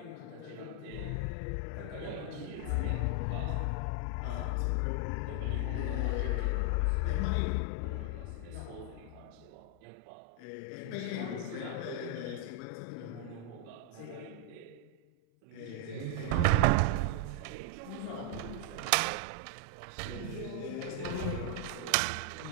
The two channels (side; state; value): both; different; correlation 0.00